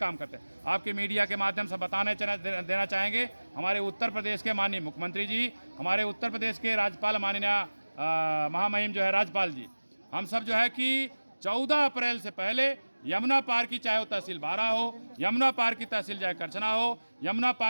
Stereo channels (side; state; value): both; inverted; correlation -1.00